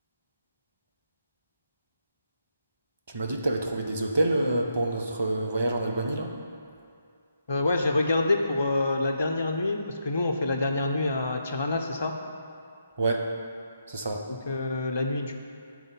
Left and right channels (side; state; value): both; inverted; correlation -0.80